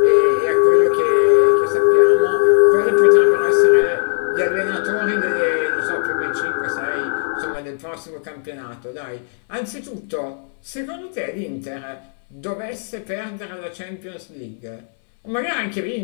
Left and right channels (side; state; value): right; silent; 67 dB below the other